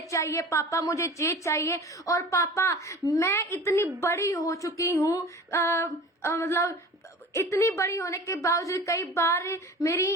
चाहिए, पापा मुझे ये चाहिए, और पापा मैं इतनी बड़ी हो चुकी हूँ, मतलब इतनी बड़ी होने के बावजूद कई बार मेरी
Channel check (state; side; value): normal; both; correlation 0.40